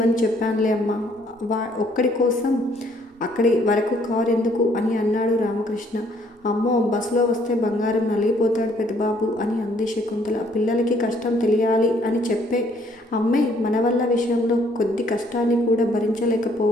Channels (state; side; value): normal; both; correlation 0.64